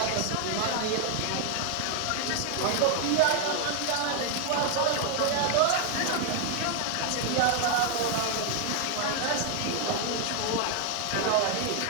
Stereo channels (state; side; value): different; both; correlation 0.00